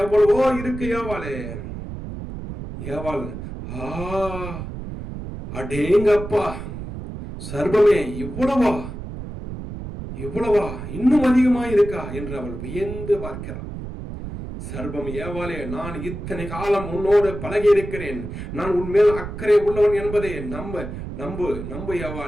எவ்வளவோ இருக்கு. ஏவாள் அடேங்கப்பா, சர்ப்பமே இவ்வளவா இன்னும் அதிகமா இருக்கா என்று அவள் வியந்து பார்க்கிறாள். சர்ப்பம் ஏவாளே, நான் இத்தனை காலம் உன்னோடு பழகி இருக்கிறேன், நான் உன்மேல் அக்கறை உள்ளவன் என்பதை நம்பு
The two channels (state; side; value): noise; right; rumble, 8 dB below the sound